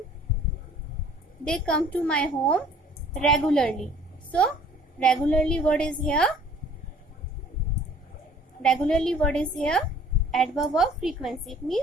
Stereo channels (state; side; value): normal; both; correlation 0.53